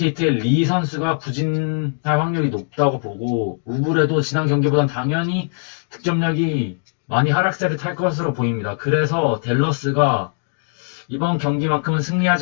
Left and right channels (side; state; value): right; silent; digital silence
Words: 리 선수가 부진할 확률이 높다고 보고, 우블에도 지난 경기보단 당연히 득점력이 많이 하락세를 탈 것으로 보입니다. 그래서 댈러스가 이번 경기만큼은